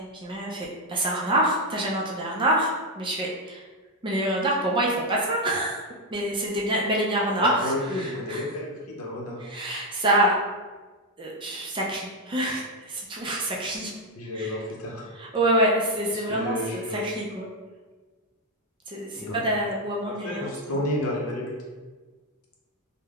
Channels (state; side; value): normal; both; correlation 0.02